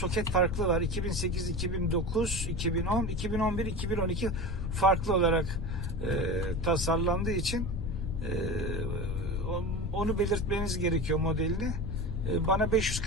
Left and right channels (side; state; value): left; noise; rumble, 4 dB below the sound